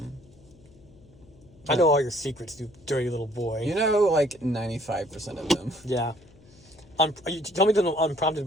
I know all your secrets, you dirty little boy. You know, like 95% of them. Yeah. You tell me them unprompted,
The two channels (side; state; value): left; noise; hum, 26 dB below the sound